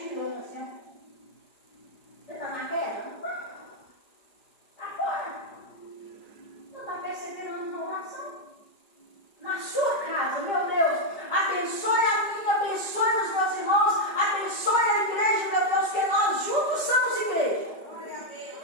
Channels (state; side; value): late; right; 5.0 ms